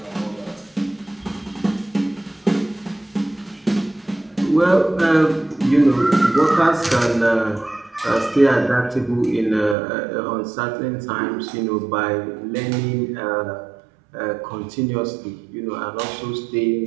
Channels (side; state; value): left; drops out; at 9.8 s